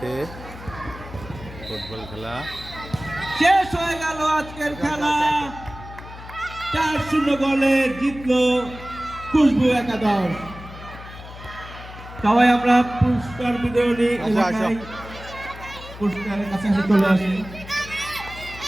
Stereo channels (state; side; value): noise; left; hum, 15 dB below the sound